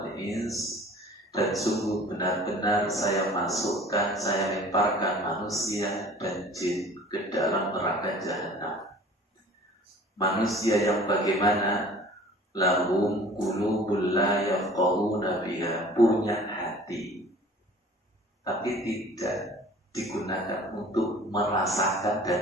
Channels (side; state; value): both; normal; correlation 0.47